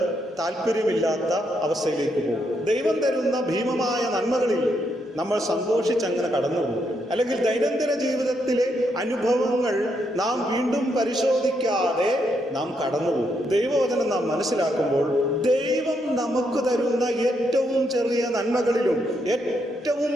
താല്പര്യമില്ലാത്ത അവസ്ഥയിലേക്ക് പോകും. ദൈവം തരുന്ന ഭീമമായ നന്മകളിൽ നമ്മൾ സന്തോഷിച്ചങ്ങനെ കടന്നു പോകും. അല്ലെങ്കിൽ ദൈനംദിന ജീവിതത്തിലെ അനുഭവങ്ങൾ നാം വീണ്ടും പരിശോധിക്കാതെ നാം കടന്നുപോകും. ദൈവവചനം നാം മനസ്സിലാക്കുമ്പോൾ ദൈവം നമുക്ക് തരുന്ന ഏറ്റവും ചെറിയ നന്മകളിലും ഏറ്റവും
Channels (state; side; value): normal; both; correlation 0.78